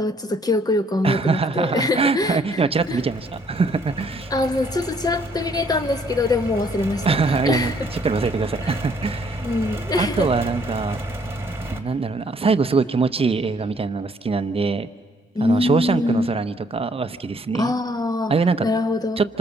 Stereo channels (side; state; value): both; normal; correlation 0.65